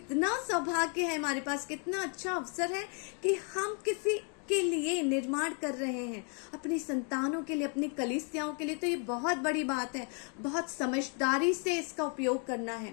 सौभाग्य है हमारे पास, कितना अच्छा अवसर है कि हम किसी के लिए निर्माण कर रहे हैं, अपनी संतानों के लिए, अपनी कलीसियाओं के लिए। तो ये बहुत बड़ी बात है, बहुत समझदारी से इसका उपयोग करना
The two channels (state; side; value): quieter; right; 39.8 dB